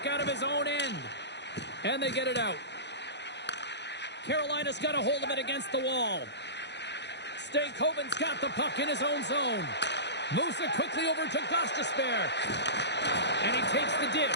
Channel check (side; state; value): right; late; 0.50 ms